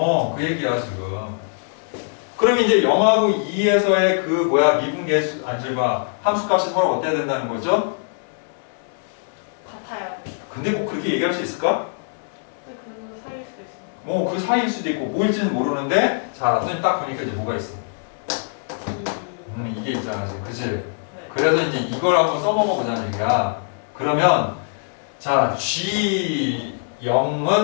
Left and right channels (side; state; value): right; silent; digital silence